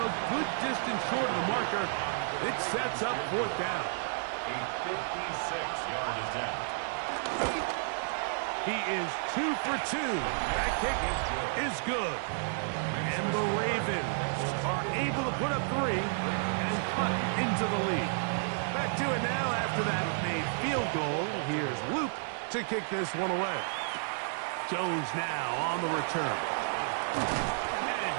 a good distance short of the marker. It sets up 4th down. A 56-yard attempt. He is 2 for 2. That kick is good. And the Ravens are able to put up 3 and cut into the lead. Back to it now after that made field goal. Here's Luke to kick this one away. Jones now on the return. And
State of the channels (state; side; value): silent; left; digital silence